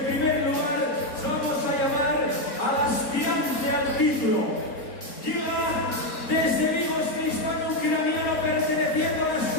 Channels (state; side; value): late; right; 3.9 ms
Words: primer lugar vamos a llamar al aspirante al título. Llega desde Vigo este hispano-ucraniano perteneciendo a la